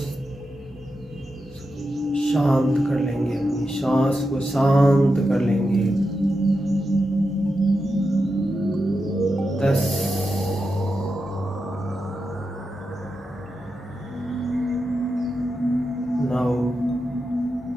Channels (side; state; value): both; normal; correlation 0.88